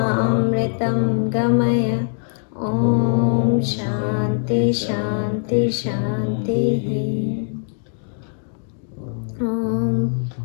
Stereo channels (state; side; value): silent; right; 60 dB below the other